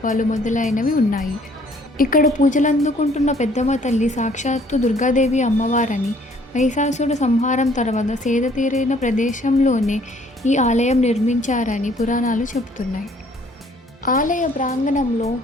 మొదలైనవి ఉన్నాయి. ఇక్కడ పూజలు అందుకుంటున్న పెద్దమ్మ తల్లి సాక్షాత్తు దుర్గాదేవి అమ్మవారని, మహిషాసురుడి సంహారం తర్వాత సేద తీరిన ప్రదేశంలోనే ఈ ఆలయం నిర్మించారని పురాణాలు చెబుతున్నాయి. ఆలయ ప్రాంగణంలో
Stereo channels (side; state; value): both; normal; correlation 0.60